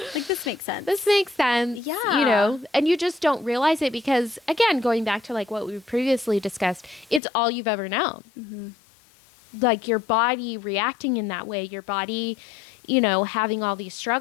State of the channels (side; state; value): right; drops out; at 7.2 s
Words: Like, this makes sense. This makes sense. Yeah. And you just don't realize it because, again, going back to, like, what we previously discussed, it's all you've ever known. Mm-hmm. Like, your body reacting in that way, your body, having all these